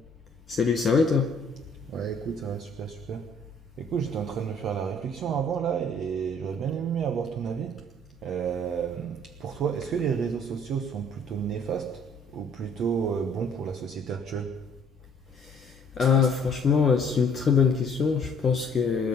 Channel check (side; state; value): both; normal; correlation 0.59